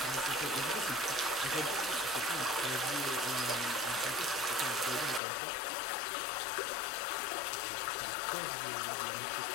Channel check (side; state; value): right; drops out; at 5.2 s